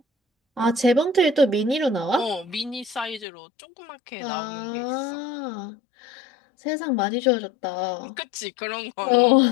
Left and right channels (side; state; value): right; drops out; at 3.2 s